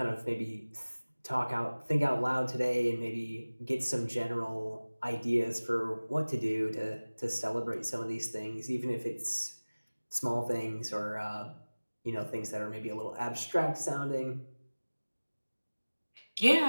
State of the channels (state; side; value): inverted; both; correlation -1.00